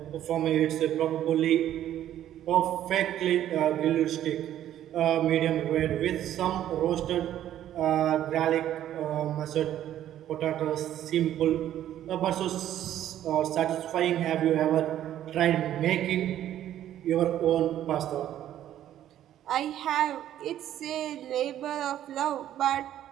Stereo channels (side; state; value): left; quieter; 11.7 dB